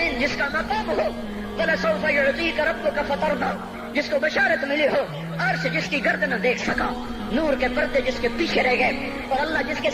جس کا مقام ہو، وَلَسَوْفَ يُعْطِيكَ رَبُّكَ فَتَرْضَىٰ جس کو بشارت ملی ہو، عرش جس کی گرد نہ دیکھ سکا، نور کے پردے جس کے پیچھے رہ گئے، اور اللہ جس کے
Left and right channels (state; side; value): identical; both; correlation 1.00